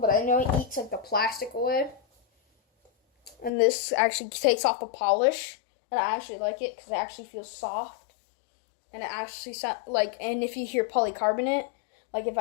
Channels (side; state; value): right; drops out; at 3.5 s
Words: but I know it eats like the plastic away. And this actually takes off the polish, and I actually like it because it actually feels soft, and it actually sounds like. And if you hear polycarbonate, like if